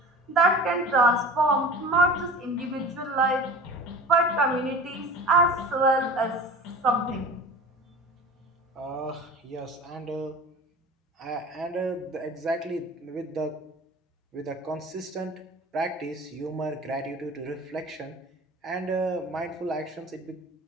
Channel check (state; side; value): normal; both; correlation 0.38